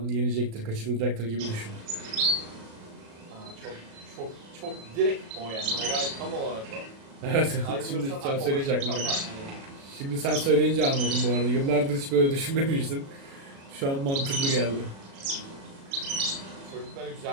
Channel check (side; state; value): left; late; 36 ms